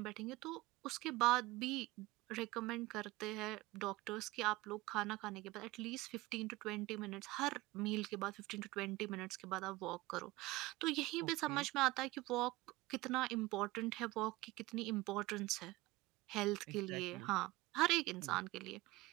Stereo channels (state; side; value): quieter; left; 20.0 dB